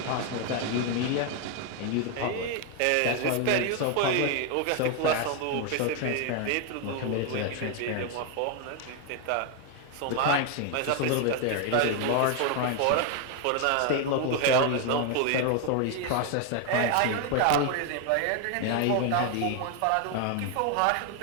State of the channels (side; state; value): both; different; correlation 0.01